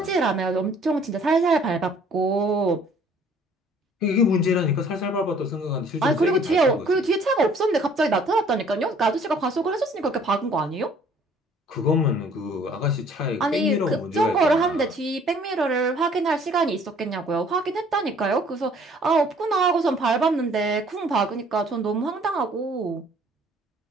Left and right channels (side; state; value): both; normal; correlation 0.57